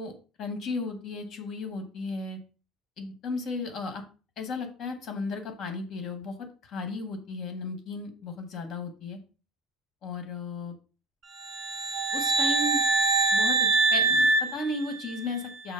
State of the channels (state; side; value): normal; both; correlation 0.39